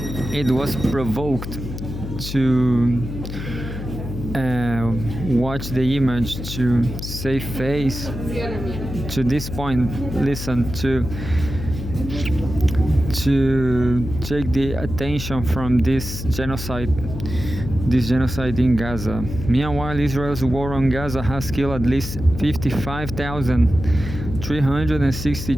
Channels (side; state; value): left; noise; hum, 7 dB below the sound